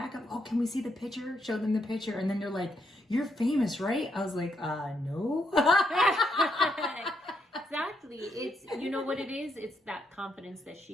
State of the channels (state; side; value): normal; both; correlation 0.78